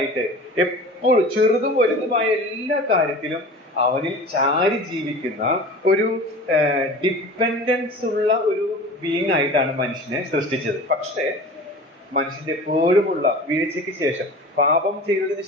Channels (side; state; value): both; normal; correlation 0.38